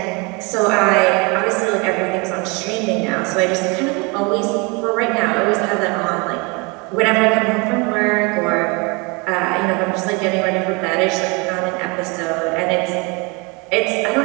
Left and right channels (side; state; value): left; quieter; 29.0 dB